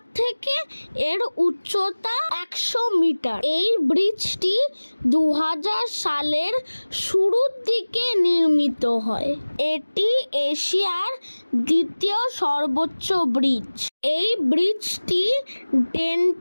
থেকে এর উচ্চতা 100 মিটার। এই ব্রিজটি 2000 সালের শুরুর দিকে নির্মিত হয়। এটি এশিয়ার দ্বিতীয় সর্বোচ্চ ব্রিজ। এই ব্রিজটি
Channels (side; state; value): both; inverted; correlation -1.00